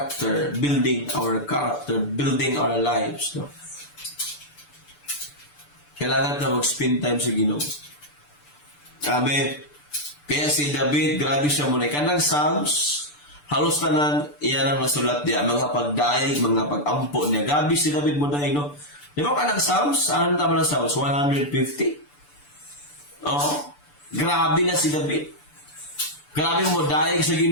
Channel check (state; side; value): late; right; 6.8 ms